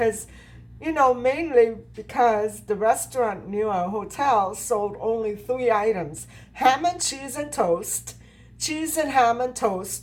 mainly because the restaurant near our hotel sold only three items: ham and cheese and toast, cheese and ham and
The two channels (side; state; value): both; identical; correlation 1.00